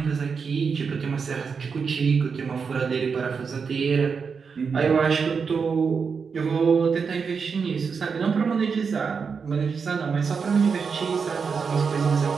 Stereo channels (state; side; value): quieter; left; 5.7 dB